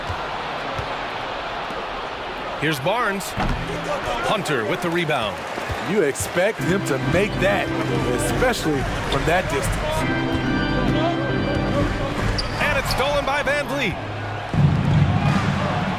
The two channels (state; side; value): identical; both; correlation 1.00